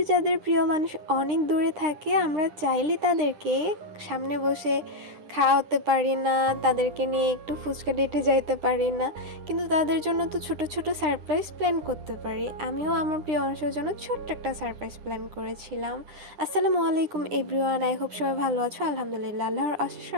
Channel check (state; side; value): late; left; 10 ms